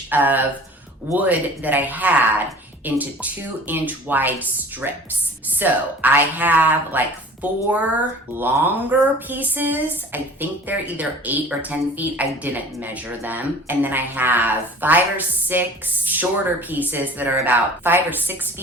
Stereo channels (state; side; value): normal; both; correlation 0.44